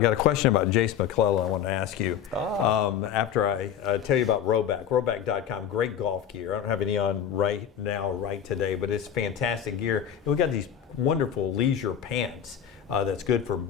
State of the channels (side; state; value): right; quieter; 9.1 dB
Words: a question about Jace McClellan I want to ask you. After I tell you about Roback.com, great golf gear. I don't have any on right today, but it's fantastic gear. And we got these wonderful leisure pants. That's good for